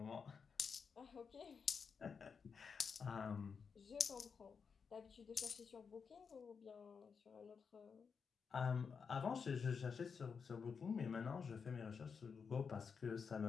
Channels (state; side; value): quieter; right; 5.9 dB